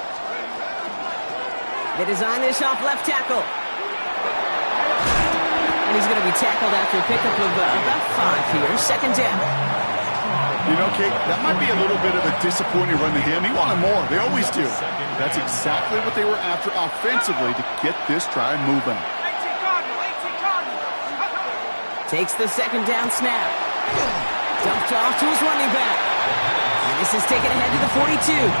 They design this off left tackle. And he's going to be tackled after a pickup of about 5 here. 2nd down. You know, Kate, that might be a little bit of a disappointing run to him. He wanted more. They always do. That's exactly what they were after offensively to get this drive moving. 18 Cardinals, 18 Cardinals. Takes the 2nd down snap. Dumped off to his running back. And this is taken ahead to the 42.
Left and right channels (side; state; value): both; inverted; correlation -1.00